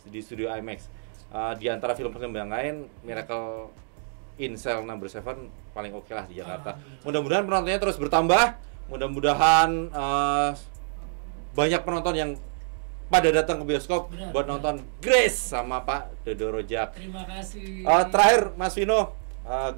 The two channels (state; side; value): silent; left; digital silence